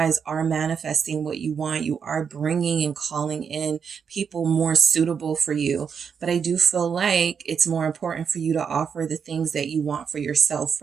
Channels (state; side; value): quieter; left; 6.7 dB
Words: are manifesting what you want. You are bringing and calling in people more suitable for you. But I do feel like it's more important for you to offer the things that you want for yourself